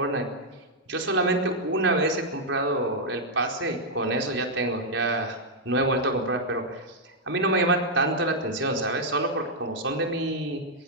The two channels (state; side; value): normal; both; correlation -0.04